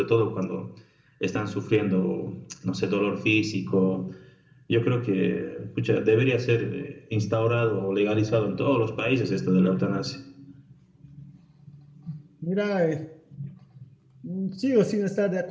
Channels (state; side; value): identical; both; correlation 1.00